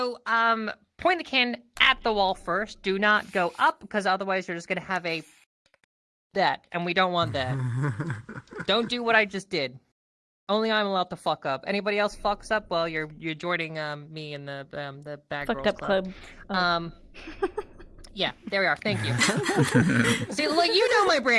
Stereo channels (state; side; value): identical; both; correlation 1.00